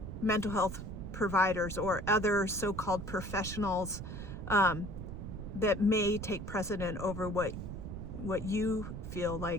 mental health providers or other so-called professionals that may take precedent over what you feel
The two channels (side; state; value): right; noise; rumble, 8 dB below the sound